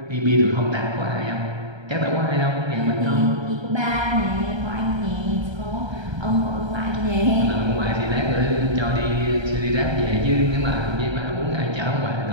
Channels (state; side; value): late; left; 1.3 ms